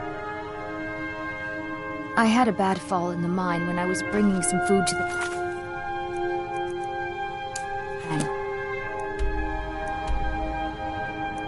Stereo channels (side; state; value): both; identical; correlation 1.00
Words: I had a bad fall in the mine when I was bringing some food to the men.